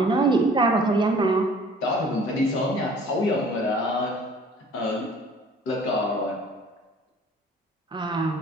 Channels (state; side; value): normal; both; correlation 0.51